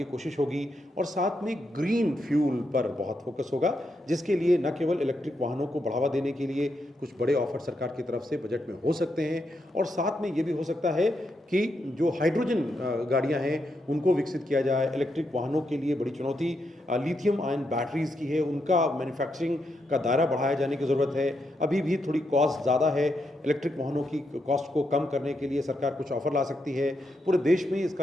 कोशिश होगी और साथ में ग्रीन फ्यूल पर बहुत फोकस होगा, जिसके लिए न केवल इलेक्ट्रिक वाहनों को बढ़ावा देने के लिए कुछ बड़े ऑफर सरकार की तरफ से बजट में हो सकते हैं और साथ में ये भी हो सकता है कि जो हाइड्रोजन गाड़ियाँ हैं उनको विकसित किया जाए। इलेक्ट्रिक वाहनों के लिए बड़ी चुनौती लिथियम आयन बैटरीज की है, उनका मैन्युफैक्चरिंग का दायरा बढ़ाया जाने की ज़रूरत है। अभी भी थोड़ी कॉस्ट ज़्यादा है, इलेक्ट्रिक वाहनों की कॉस्ट को कम करने के लिए सरकार कुछ ऑफर ला सकती है। पूरे देश में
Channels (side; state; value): both; normal; correlation 0.82